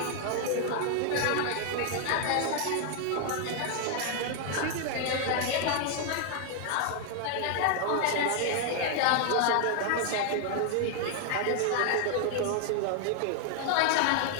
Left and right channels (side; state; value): both; different; correlation 0.00